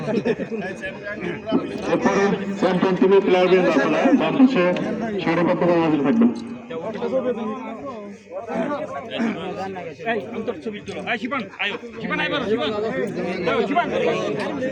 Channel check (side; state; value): both; identical; correlation 1.00